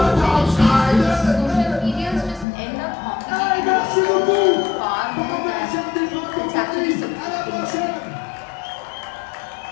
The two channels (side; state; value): right; drops out; at 2.5 s